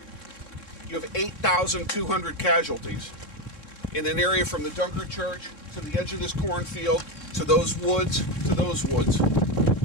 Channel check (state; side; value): late; right; 3.7 ms